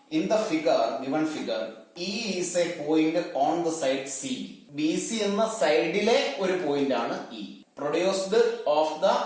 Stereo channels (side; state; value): both; identical; correlation 1.00